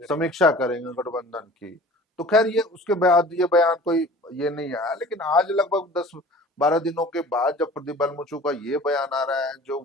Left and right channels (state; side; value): normal; both; correlation 0.44